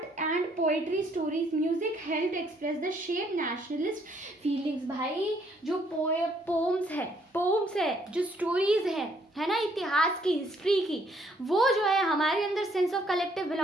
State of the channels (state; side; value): normal; both; correlation 0.67